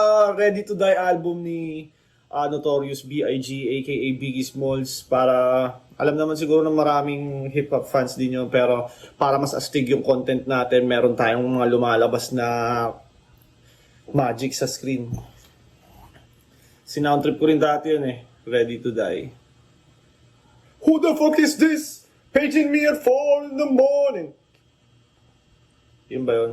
Ready to Die album ni Notorious B.I.G. aka Biggie Smalls, para alam naman siguro ng maraming hip-hop fans din yun, pero para mas astig yung content natin, meron tayong mga lumalabas na magic sa screen. Sinoundtrip ko rin dati yun eh, Ready to Die. Who the fuck is this? Paging me at 4 in the morning. Yun ba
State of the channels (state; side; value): identical; both; correlation 1.00